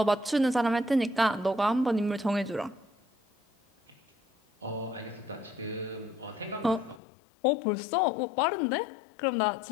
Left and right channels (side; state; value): right; drops out; at 7.0 s